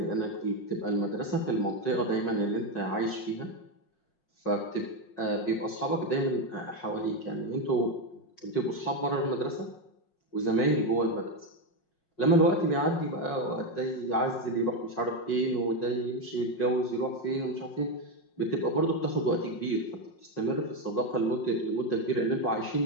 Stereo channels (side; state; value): right; late; 5.5 ms